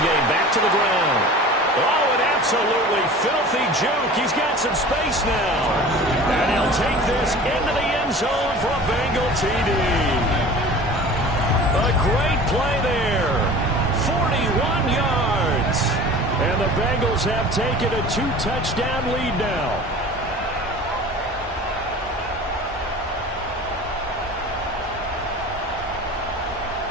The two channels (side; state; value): both; normal; correlation 0.40